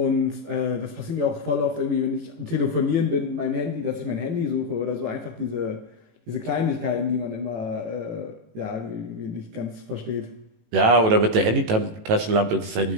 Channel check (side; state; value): left; late; 18 ms